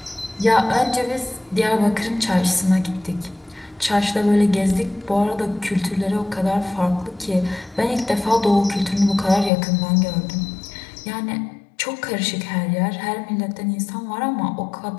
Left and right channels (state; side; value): drops out; right; at 9.5 s